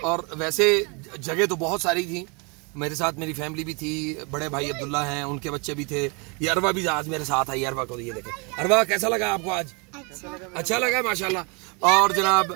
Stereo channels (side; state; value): left; quieter; 31.9 dB